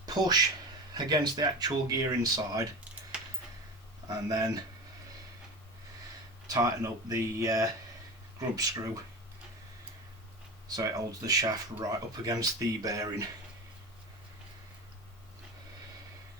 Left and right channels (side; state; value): both; normal; correlation 0.29